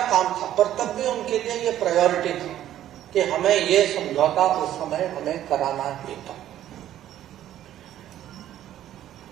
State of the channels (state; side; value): quieter; left; 12.1 dB